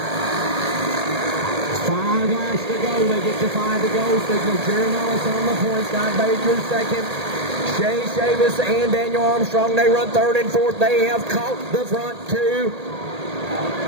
5 laps to go. They get to 5 to go. Signal Jerry Mullis on the point. Scott Baker second. Shay Chavis and Daniel Armstrong, they run third and fourth. They have caught the front two.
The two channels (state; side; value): late; left; 1.8 ms